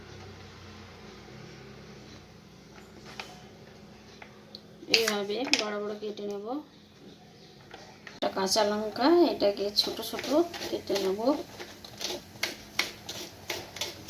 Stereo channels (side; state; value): both; identical; correlation 1.00